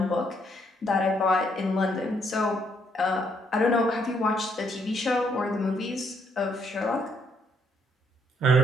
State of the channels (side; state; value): both; normal; correlation 0.71